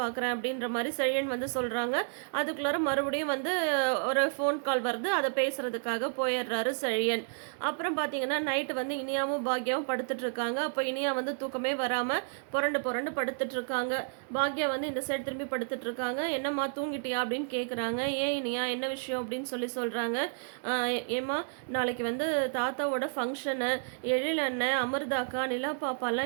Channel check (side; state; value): left; silent; digital silence